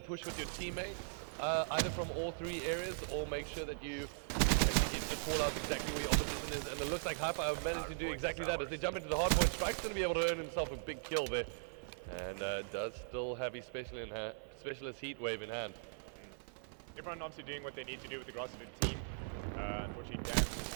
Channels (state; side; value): silent; left; 51 dB below the other